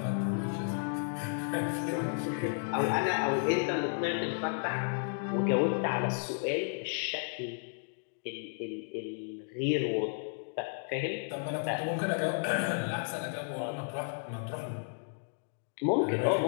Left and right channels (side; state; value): right; silent; digital silence